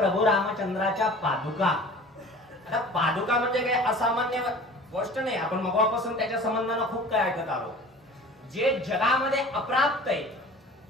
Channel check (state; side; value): normal; both; correlation 0.43